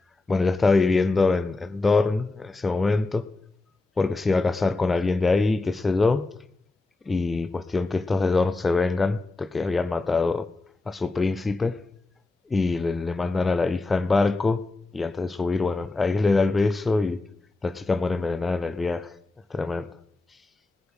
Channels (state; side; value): quieter; right; 3.3 dB